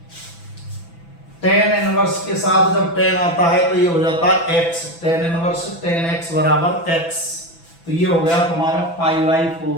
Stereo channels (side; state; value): right; late; 6.0 ms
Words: tan इनवर्स के साथ जब tan आता है तो ये हो जाता है x, tan inverse tan x बराबर x, तो ये हो गया तुम्हारा पाई बाई